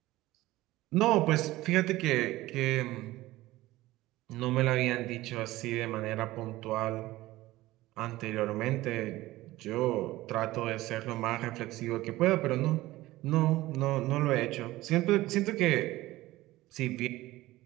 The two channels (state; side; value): quieter; left; 17.5 dB